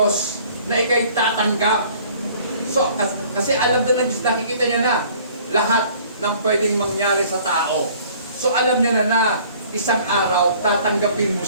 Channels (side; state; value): both; inverted; correlation -0.53